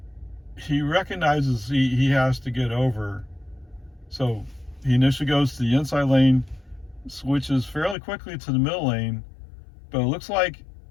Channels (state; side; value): drops out; right; at 8.0 s